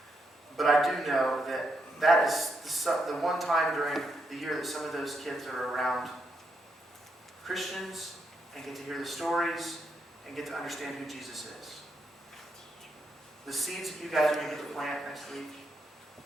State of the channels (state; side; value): normal; both; correlation 0.80